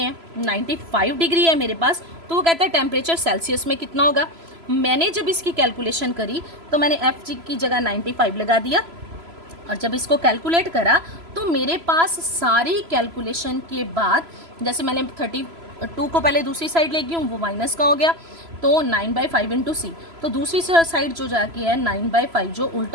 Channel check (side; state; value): left; late; 3.0 ms